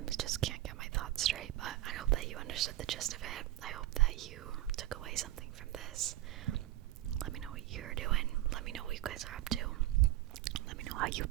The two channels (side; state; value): left; quieter; 15.3 dB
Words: just can't get my thoughts straight, but I hope that you understood the gist of it. I hope that you took away something from this. Let me know what you're doing. Let me know what you guys are up to. Let me know how you've